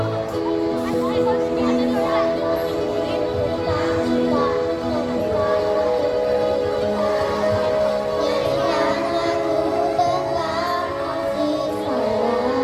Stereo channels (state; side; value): identical; both; correlation 1.00